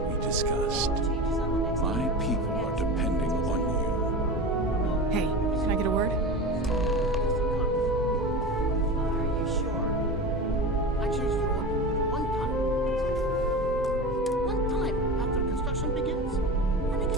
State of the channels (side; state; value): both; normal; correlation 0.28